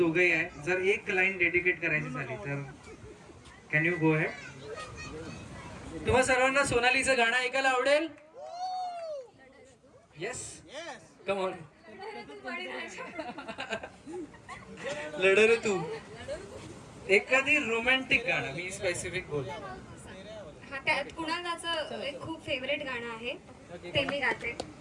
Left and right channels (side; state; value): both; identical; correlation 1.00